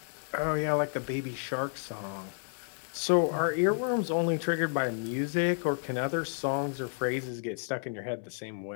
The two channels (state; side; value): silent; right; 57 dB below the other